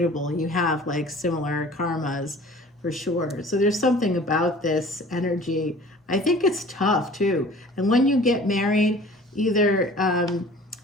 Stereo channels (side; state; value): both; normal; correlation 0.46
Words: you have like similar karmas for sure. So there's something about this energy. I think it's tough too. And when you get married, either